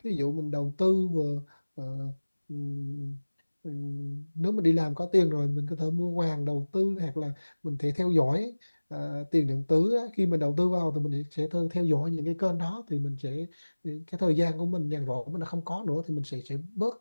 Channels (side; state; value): both; inverted; correlation -1.00